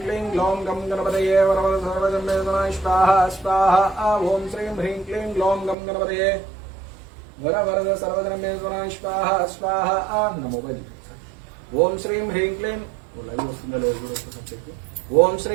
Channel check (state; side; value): drops out; left; at 5.8 s